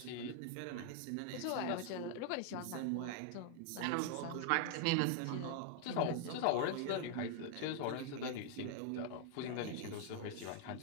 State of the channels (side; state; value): both; different; correlation 0.00